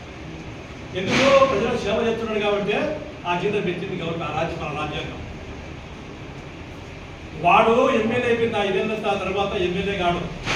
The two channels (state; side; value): identical; both; correlation 1.00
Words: ఎందుకు ప్రజలకు సేవ చేస్తున్నాడు కాబట్టి ఆ జీతం పెంచింది గవర్నమెంట్, మన రాజ్యాంగం. వాడు ఎమ్మెల్యే అయిపోయింది 5 ఏళ్ళ తర్వాత ఎమ్మెల్యే కాడు,